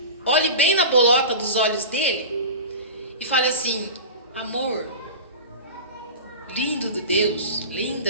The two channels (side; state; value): both; inverted; correlation -0.30